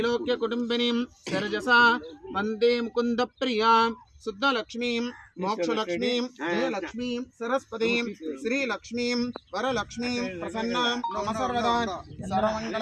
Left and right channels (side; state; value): both; identical; correlation 1.00